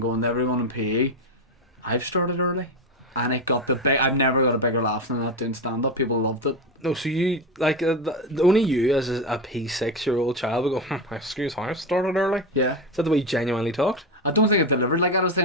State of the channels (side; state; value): both; normal; correlation 0.16